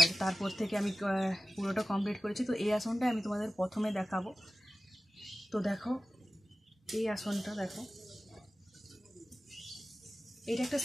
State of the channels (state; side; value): normal; both; correlation 0.95